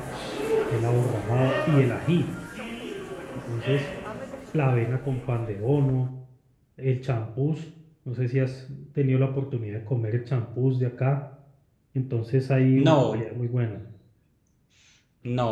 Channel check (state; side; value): identical; both; correlation 1.00